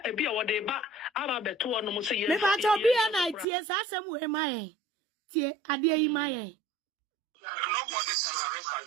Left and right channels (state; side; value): drops out; left; at 3.5 s